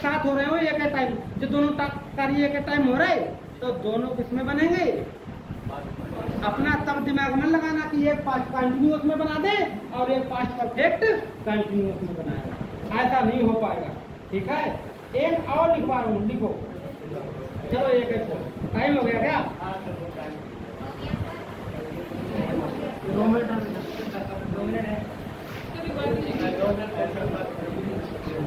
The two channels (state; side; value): identical; both; correlation 1.00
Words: साथ हो रहे हो एक टाइम, जो दोनों कार्य एक टाइम हो रहे तो दोनों किसमें बनेंगे? अपना तब दिमाग में लगाना कि एक पास्ट कंटिन्यूअस में बना दे और एक पास्ट परफेक्ट कंटिन्यूअस में बनाएगा, ऐसा नहीं हो पाएगा। ठीक है, एक और लिखवा रहा हूँ, लिखो। चलो एक टाइम हो गया क्या? 2 मिनट है।